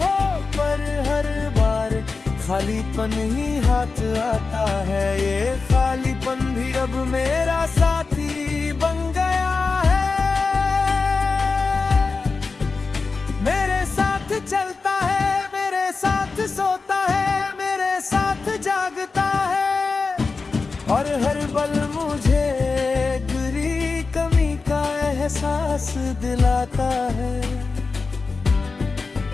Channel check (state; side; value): quieter; right; 4.3 dB